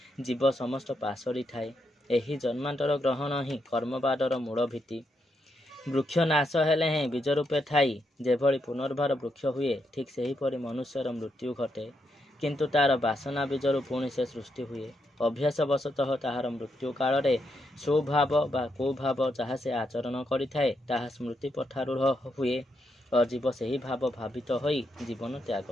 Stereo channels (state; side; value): normal; both; correlation 0.81